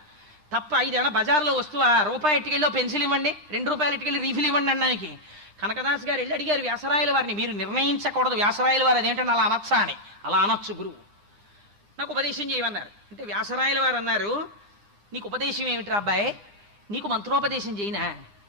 తప్ప ఇదేమన్నా బజార్లో వస్తువా, రూపాయి ఎట్టుకెళ్ళి పెన్సిల్ ఇవ్వండి, 2 రూపాయలు ఎట్టుకెళ్ళి రీఫిల్ ఇవ్వండి అన్నానికి. కనకదాస్ గారు వెళ్ళి అడిగారు వ్యాసరాయల వారిని, మీరు నిర్ణయించకూడదు వ్యాసరాయల వారు అదేంటంటే అలా అనొచ్చా అని. అలా అనొచ్చు గురువు, నాకు ఉపదేశం చేయమన్నారు. అంటే వ్యాసరాయల వారు అన్నారు, నీకు ఉపదేశం ఏమిట్రా అబ్బాయి, నీకు మంత్రోపదేశం చేయనా,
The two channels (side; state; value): left; late; 9.9 ms